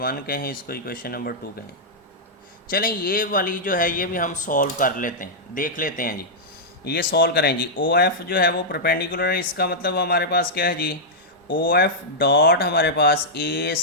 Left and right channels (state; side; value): normal; both; correlation -0.08